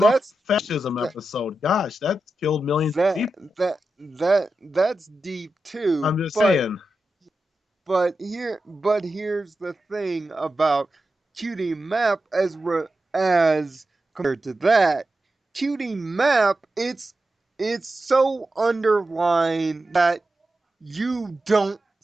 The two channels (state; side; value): normal; both; correlation 0.91